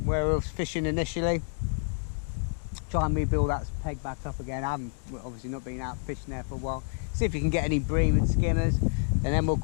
where we were fishing initially. Try and rebuild that peg back up again. I haven't obviously not been out fishing there for a while. See if you can get any bream and skimmers, and then we'll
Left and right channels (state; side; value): silent; right; 59 dB below the other